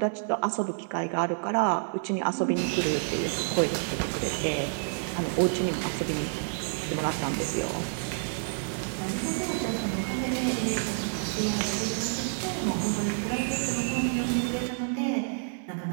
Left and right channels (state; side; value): silent; left; 59 dB below the other